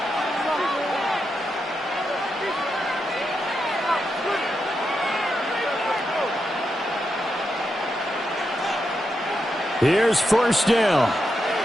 Here's 1st down.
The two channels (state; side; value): normal; both; correlation 0.85